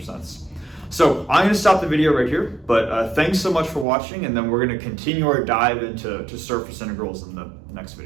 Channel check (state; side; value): drops out; left; at 3.9 s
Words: sense. So I'm going to stop the video right here, but thanks so much for watching, and then we're going to continue our dive into surface integrals in the next